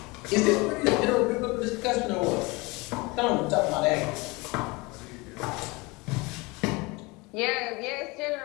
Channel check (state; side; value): quieter; right; 25.1 dB